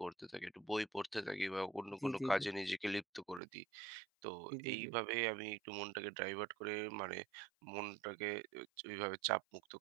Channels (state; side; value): drops out; left; at 3.4 s